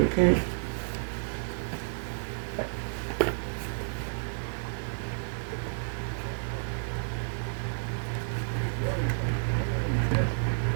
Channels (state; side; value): silent; left; digital silence